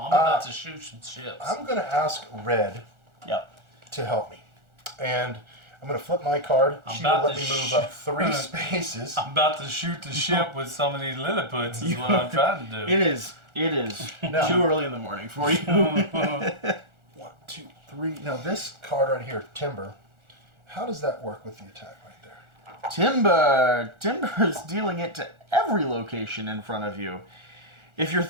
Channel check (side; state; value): left; late; 1.4 ms